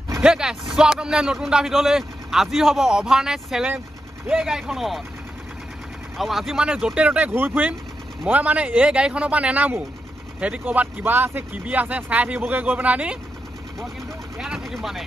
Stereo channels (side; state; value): both; normal; correlation 0.86